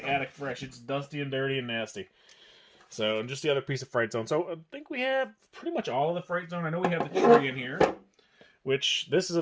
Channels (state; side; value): identical; both; correlation 1.00